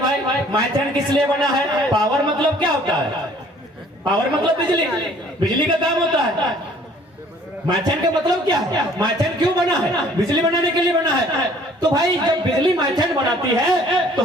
मैथन किस लिए बना है? पावर मतलब क्या होता है? पावर मतलब बिजली, बिजली का काम होता है। मैथन का मतलब क्या है? मैथन क्यों बना है? बिजली बनाने के लिए बना है। तो भाई जब बिजली मैथन बनाती है तो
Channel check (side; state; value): both; normal; correlation 0.56